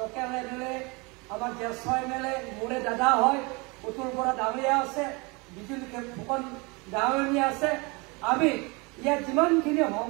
MLA আমাৰ জ্যেষ্ঠ MLA মোৰে দাদা হয়, উত্তৰ পৰা ডাঙৰীয়া আছে, বিজুলী ফুকন ডাঙৰীয়া আছে। আমি ইয়াত যিমানখিনি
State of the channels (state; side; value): quieter; left; 27.9 dB